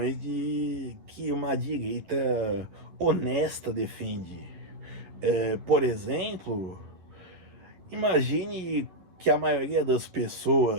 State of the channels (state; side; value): late; left; 11 ms